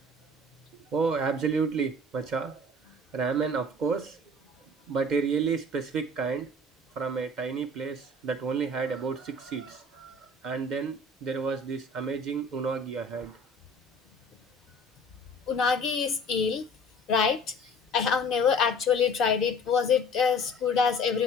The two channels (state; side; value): normal; both; correlation 0.47